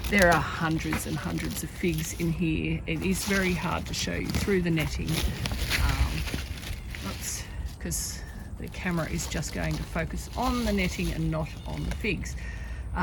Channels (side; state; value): both; identical; correlation 1.00